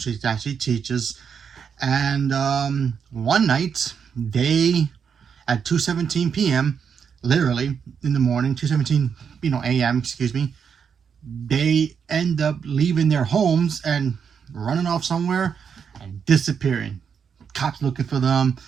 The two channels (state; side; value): quieter; left; 6.9 dB